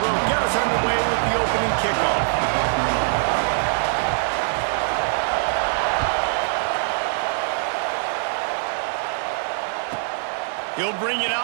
will get us underway with the opening kickoff. He'll bring it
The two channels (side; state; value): left; silent; 60 dB below the other